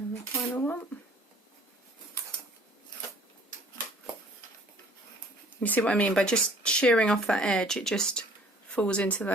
the final one. You see what I mean? By just shearing off that edge, it just falls into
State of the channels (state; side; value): normal; both; correlation 0.54